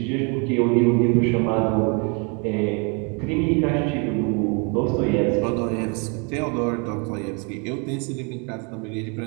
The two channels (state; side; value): quieter; left; 33.8 dB